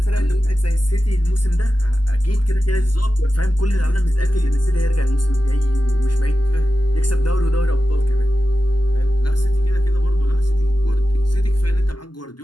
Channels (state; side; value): late; right; 0.71 ms